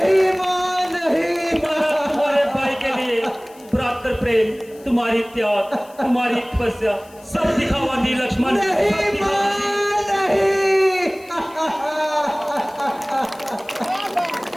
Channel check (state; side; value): noise; left; hiss, 26 dB below the sound